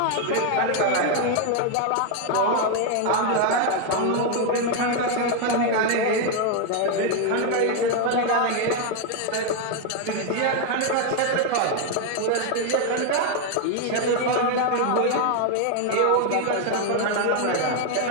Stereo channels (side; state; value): both; different; correlation 0.01